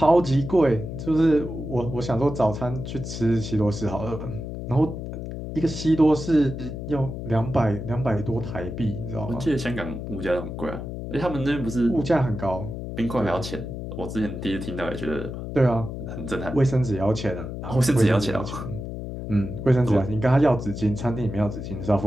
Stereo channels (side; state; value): left; noise; hum, 7 dB below the sound